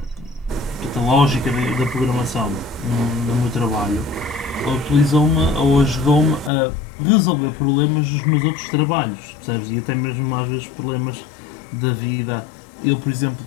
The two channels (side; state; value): right; drops out; at 6.5 s